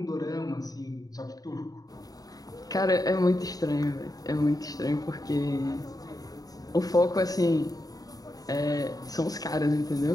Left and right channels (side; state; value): right; late; 0.18 ms